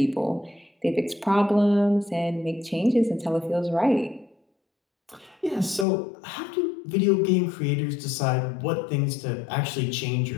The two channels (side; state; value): right; drops out; at 5.9 s